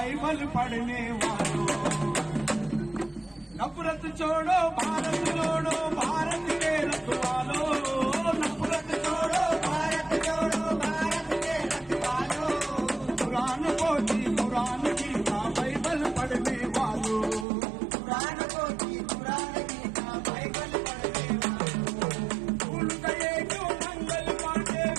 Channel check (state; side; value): drops out; left; at 17.4 s